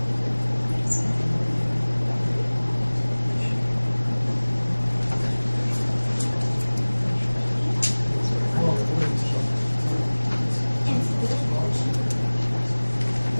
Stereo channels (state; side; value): inverted; both; correlation -1.00